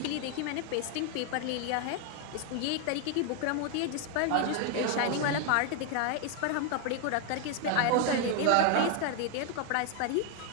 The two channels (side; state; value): both; different; correlation 0.01